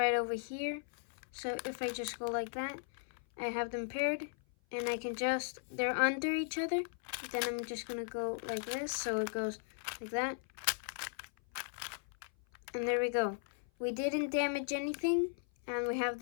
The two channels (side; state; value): right; silent; 53 dB below the other